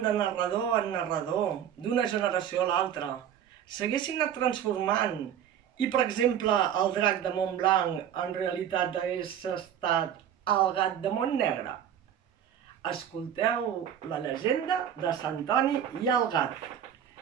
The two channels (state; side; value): quieter; left; 9.6 dB